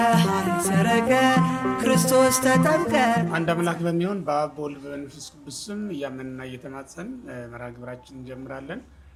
ሰረቀ ክርስቶስ ተጠምቀ። አንድ አምላክ በሚሆን በአብ በወልድ በመንፈስ ቅዱስ ስም እያመንና እየተማጸን መርሃ ግብራችን እንጀምራለን።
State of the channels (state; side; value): identical; both; correlation 1.00